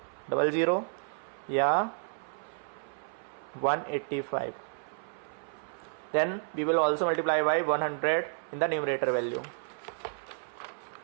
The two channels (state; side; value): silent; left; 57 dB below the other